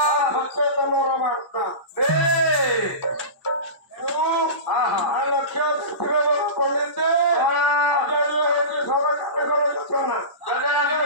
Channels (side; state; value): right; late; 1.1 ms